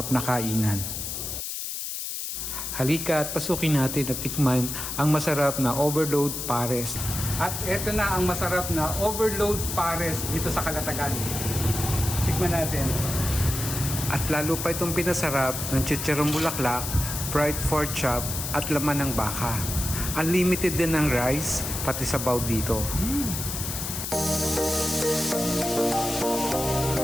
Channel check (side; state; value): left; noise; hiss, 5 dB below the sound